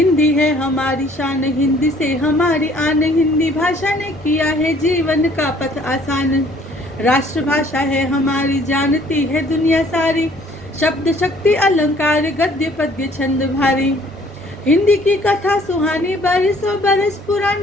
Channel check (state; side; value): normal; both; correlation 0.58